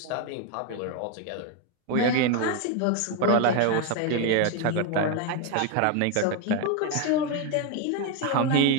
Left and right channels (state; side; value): different; both; correlation 0.01